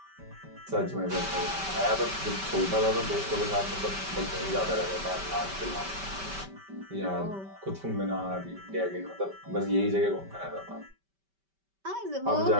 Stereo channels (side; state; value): left; late; 5.2 ms